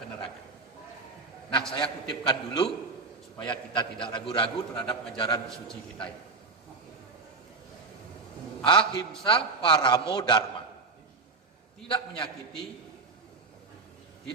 neraka. Nah, saya kutipkan dulu supaya kita tidak ragu-ragu terhadap ajaran suci kita ini. Ahimsa paramo dharma. Tidak menyakiti,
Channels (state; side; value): quieter; left; 3.8 dB